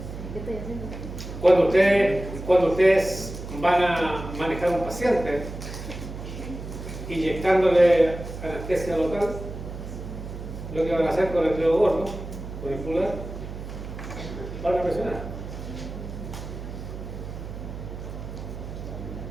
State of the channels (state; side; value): noise; right; hum, 9 dB below the sound